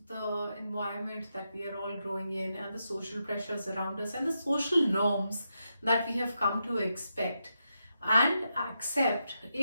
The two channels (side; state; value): both; inverted; correlation -0.85